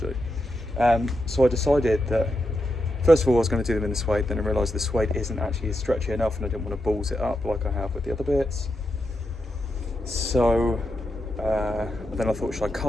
So I decided that first of all I was going to do them in the suede, then I realised the suede isn't actually stretchy enough and I didn't want to balls it up like I have with the other bits. So then I thought, should I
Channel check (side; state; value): both; normal; correlation 0.85